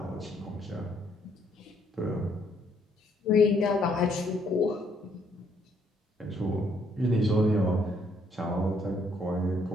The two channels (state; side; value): normal; both; correlation 0.69